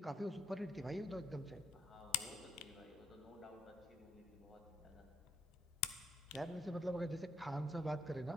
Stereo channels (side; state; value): both; normal; correlation 0.76